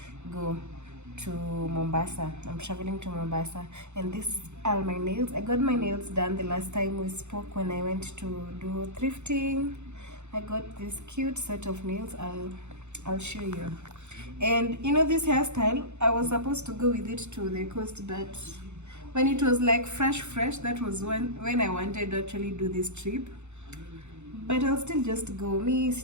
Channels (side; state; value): left; late; 0.83 ms